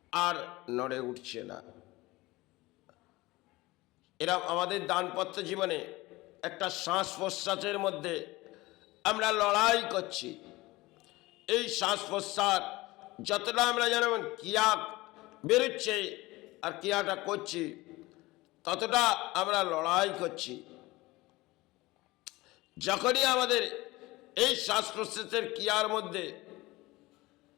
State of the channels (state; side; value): quieter; right; 20.4 dB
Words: আর নড়ে উঠছে না। এরা আমাদের দানপত্র জীবনে একটা শ্বাস প্রশ্বাসের মধ্যে আমরা লড়াই করছি। এই শ্বাস প্রশ্বাস যতটা আমরা যেমন ক্রিয়া বেরোচ্ছে আর ক্রিয়াটা করছি, ততটা আমরা লড়াই করছি। যখনই আমাদের এই শ্বাস প্রশ্বাসের ক্রিয়ার মধ্যে